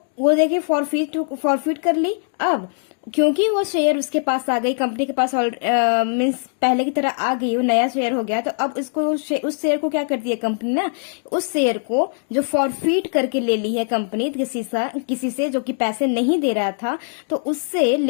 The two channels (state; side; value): silent; right; 65 dB below the other